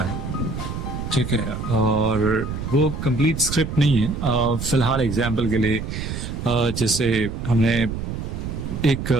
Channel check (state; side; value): noise; right; rumble, 5 dB below the sound